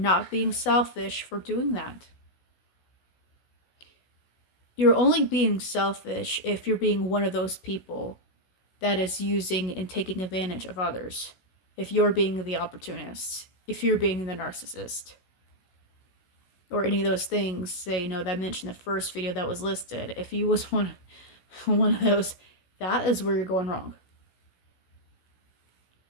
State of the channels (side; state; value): right; late; 16 ms